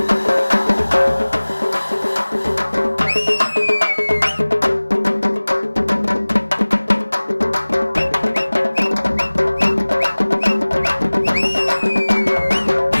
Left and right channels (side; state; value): both; inverted; correlation -1.00